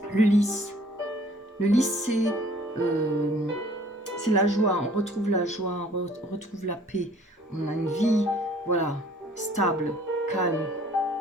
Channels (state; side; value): normal; both; correlation 0.55